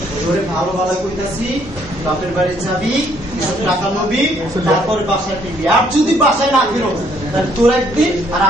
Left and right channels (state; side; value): normal; both; correlation 0.66